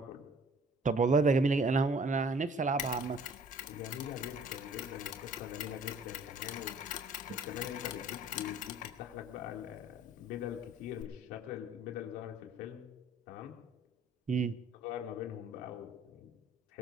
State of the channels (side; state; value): both; normal; correlation 0.54